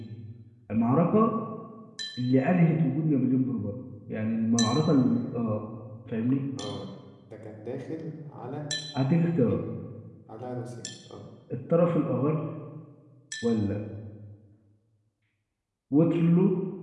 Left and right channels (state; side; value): identical; both; correlation 1.00